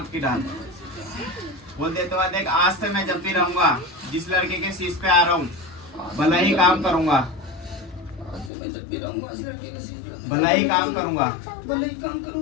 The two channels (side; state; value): right; drops out; at 8.5 s